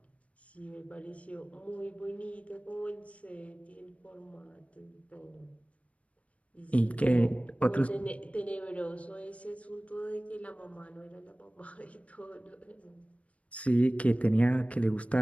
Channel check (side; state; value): right; late; 0.064 ms